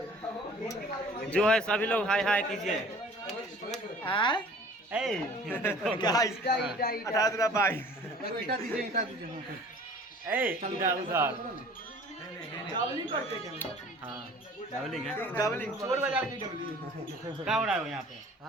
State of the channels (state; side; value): normal; both; correlation 0.48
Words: जो है सभी लोग हाय हाय कीजिए। हाँ डाबलिंग है, डाबलिंग चोर बाजार की डाबलिंग। क्या हो रहा है यहाँ पे?